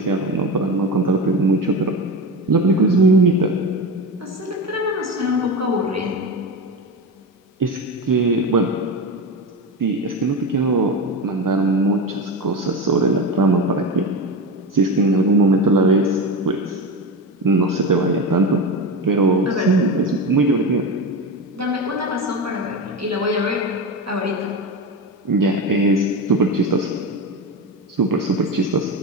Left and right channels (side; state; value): both; normal; correlation 0.21